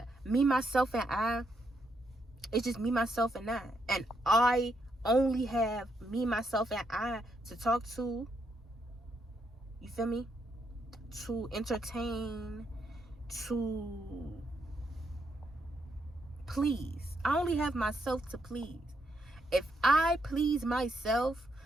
me, myself, and I, it's just me, myself, and I. And I only have me, myself, and I to talk to. You feel me? To entertain, to please. I only have myself to please. If I please myself,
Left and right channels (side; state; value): both; normal; correlation 0.78